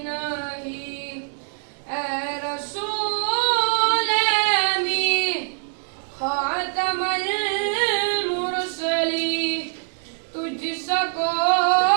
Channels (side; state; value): left; silent; 58 dB below the other